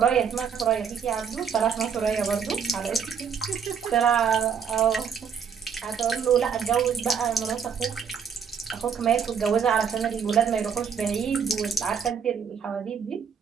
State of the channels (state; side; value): quieter; left; 7.0 dB